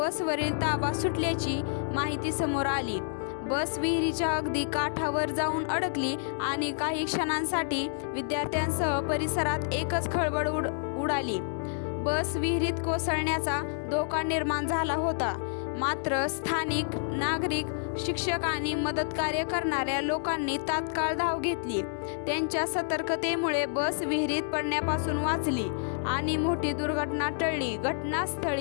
ताबा सुटल्याची माहिती समोर आली। बस विहिरीच्या अगदी काठावर जाऊन अडकली आणि काही क्षणांसाठी विद्यार्थ्यांसह परिसरात एकच खळबळ उडाली। बस विहिरीत कोसळण्याचा धोका निर्माण झाला होता, मात्र स्थानिक नागरिक, शिक्षक आणि मदतकार्य करणाऱ्या लोकांनी तात्काळ धाव घेतली। त्यांच्या सतर्कतेमुळे बस विहिरीत पडण्यापासून वाचली आणि मोठी दुर्घटना टळली।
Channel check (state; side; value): silent; right; digital silence